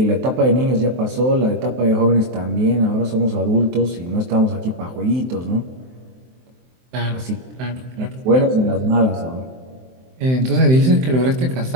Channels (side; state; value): left; late; 23 ms